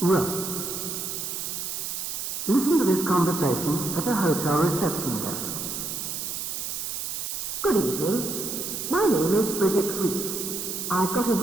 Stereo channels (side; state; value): right; noise; hiss, 4 dB below the sound